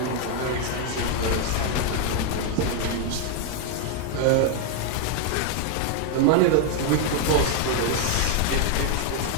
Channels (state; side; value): different; both; correlation 0.00